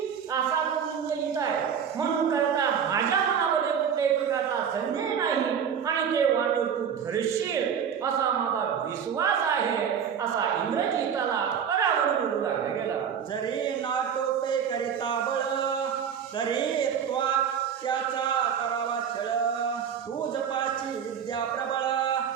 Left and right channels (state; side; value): quieter; left; 7.7 dB